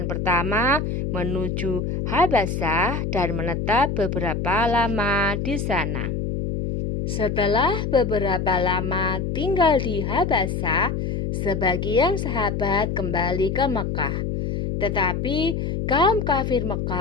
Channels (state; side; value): noise; left; hum, 2 dB below the sound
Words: pertama menuju Habasyah dan menetap beberapa lama di sana. Setelah beberapa lama tinggal di Habasyah, sebagian sahabat kembali ke Mekah. Tetapi kaum kafir